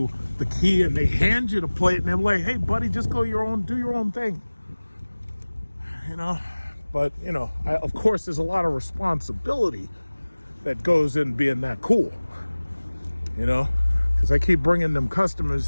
the key and they hand you the plate and they're like, hey, buddy, just go do your own thing. You know, but, you know, of course, there's a lot of responsibility that goes in being that cool, you know, because I keep bringing them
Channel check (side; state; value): both; inverted; correlation -1.00